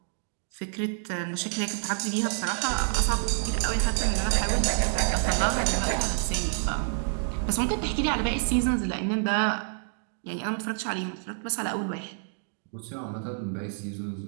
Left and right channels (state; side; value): silent; left; 59 dB below the other